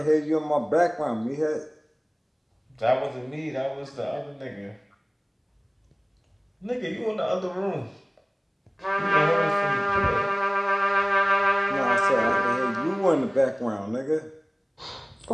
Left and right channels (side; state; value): both; identical; correlation 1.00